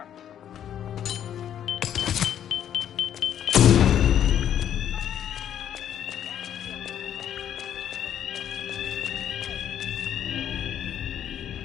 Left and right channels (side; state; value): right; quieter; 10.0 dB